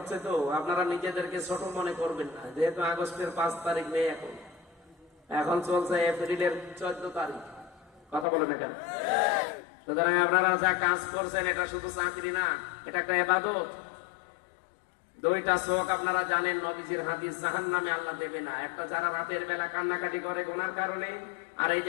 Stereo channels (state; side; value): drops out; right; at 8.2 s